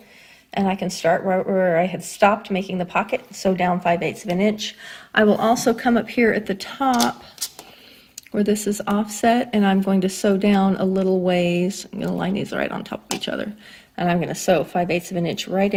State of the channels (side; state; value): both; identical; correlation 1.00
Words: and I can start where I had stopped making the pocket, sew down 5/8 of an inch. I will also come up here at the top where this is offset, and I'm going to sew down a little ways. I'm going to line these right on top of each other, and I'm going to sew 5/8 of an inch right